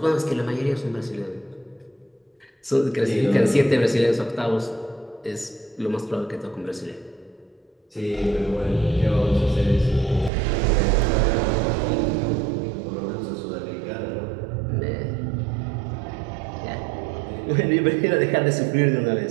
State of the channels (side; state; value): left; drops out; at 10.3 s